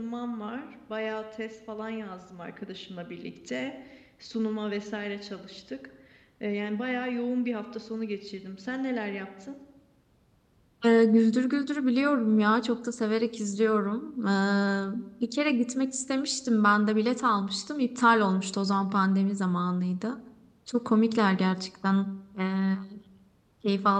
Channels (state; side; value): identical; both; correlation 1.00